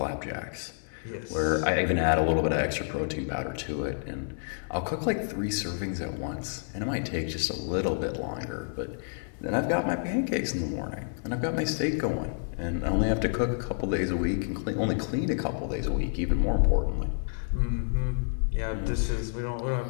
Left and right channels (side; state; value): right; silent; digital silence